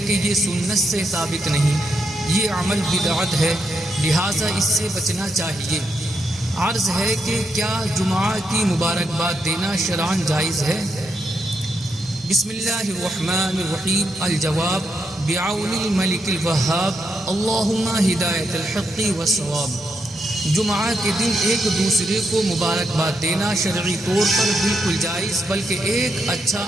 کہ یہ سنت سے ثابت نہیں، یہ عمل بدعت ہے، لہٰذا اس سے بچنا چاہیے۔ عرض ہے کہ کیا جمعہ کی مبارکباد دینا شرعاً جائز ہے؟ بسم اللہ الرحمن الرحیم۔ الجواب بعون الملک الوہاب، اللہم ہدایت الحق والصواب۔ جمعہ کے دن ایک دوسرے کو مبارکباد دینا شرعی طور پر بالکل جائز بلکہ ایک اچھا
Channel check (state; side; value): normal; both; correlation 0.81